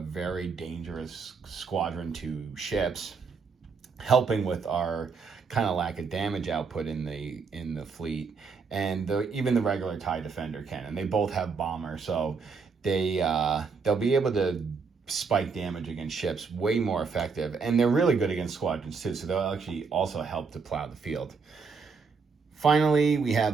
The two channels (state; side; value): quieter; left; 5.1 dB